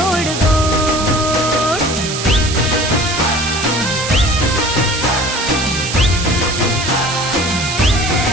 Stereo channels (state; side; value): noise; right; hiss, 5 dB below the sound